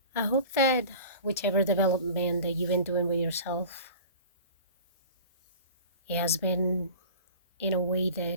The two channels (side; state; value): both; inverted; correlation -0.39